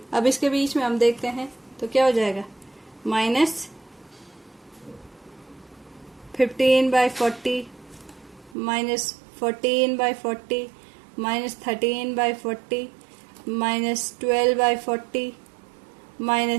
अब इसके बीच में हम देखते हैं तो क्या हो जाएगा, -15/40 -14/40 -13/40 -12/40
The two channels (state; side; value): drops out; left; at 8.6 s